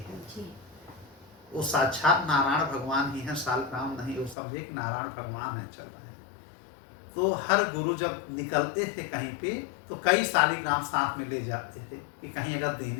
वो साक्षात नारायण भगवान ही है, शालिग्राम नहीं। वो समझे कि नारायण भगवान है, चल रहे हैं। तो हर गुरु जब निकलते थे कहीं पे तो कई शालिग्राम साथ में ले जाते थे कि कहीं अगर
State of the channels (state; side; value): drops out; right; at 4.4 s